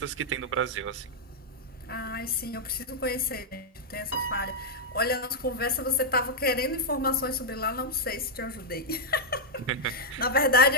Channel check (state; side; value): normal; both; correlation -0.04